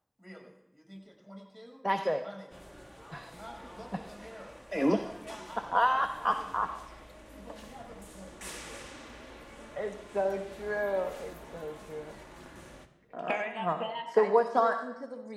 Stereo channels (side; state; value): both; identical; correlation 1.00